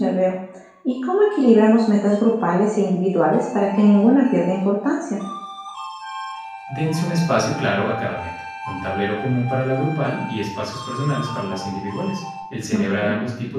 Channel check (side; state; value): both; identical; correlation 1.00